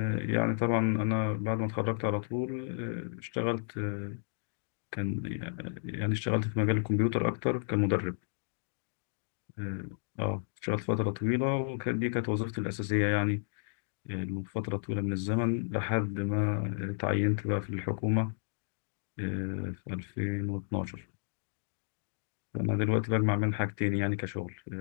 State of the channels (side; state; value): right; silent; digital silence